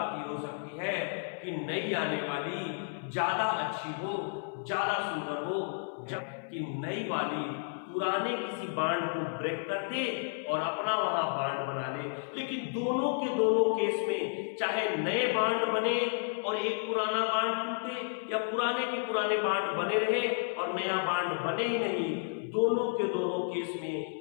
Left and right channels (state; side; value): silent; right; 56 dB below the other